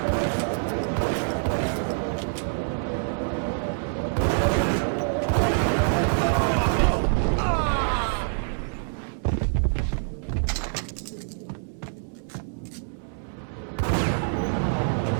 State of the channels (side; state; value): left; silent; 61 dB below the other